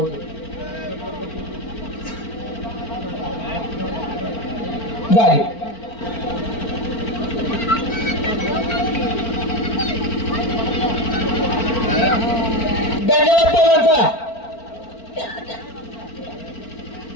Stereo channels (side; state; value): right; late; 4.4 ms